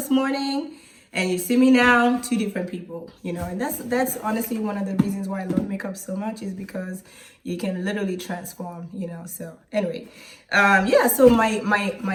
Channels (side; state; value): both; identical; correlation 1.00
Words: morning and you see me now, two different people, you know, and that's honestly one of the reasons why I love makeup so much, is because you can literally transform, you know. So anyway, yeah, so